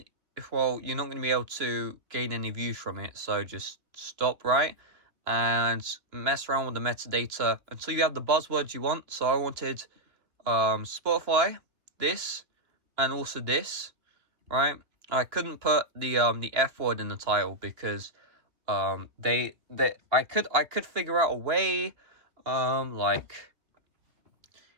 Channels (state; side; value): late; left; 2.9 ms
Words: you're not going to be able to gain any views from it, so just stop, right? And mess around with the metadata until you have the buzzwords you want. So I wanted Spotify, this, and also this, right? I couldn't put the F word in the title because I could figure out a way,